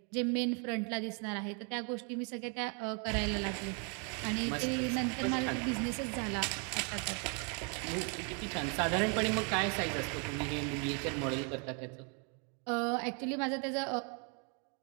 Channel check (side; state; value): left; quieter; 37.6 dB